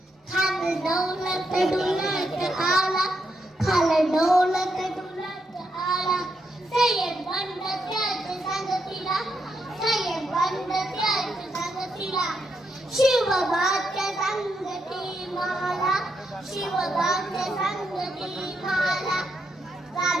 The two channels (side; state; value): both; normal; correlation 0.81